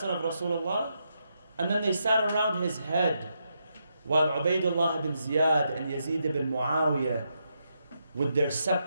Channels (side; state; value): both; inverted; correlation -0.81